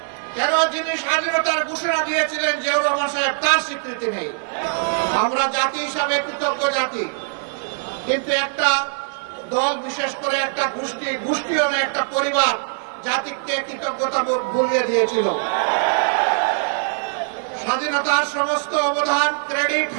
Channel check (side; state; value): left; silent; 57 dB below the other